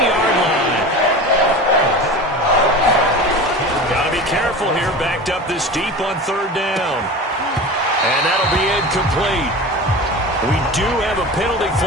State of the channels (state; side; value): normal; both; correlation 0.32